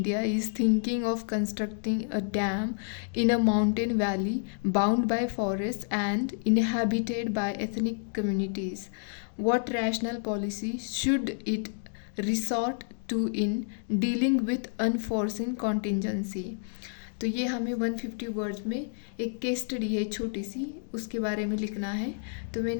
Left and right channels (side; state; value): right; silent; digital silence